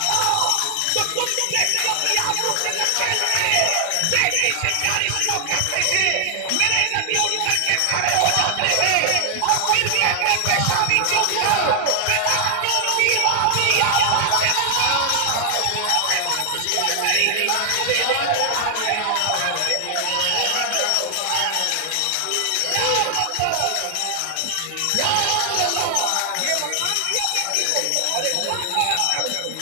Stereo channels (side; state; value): both; different; correlation 0.00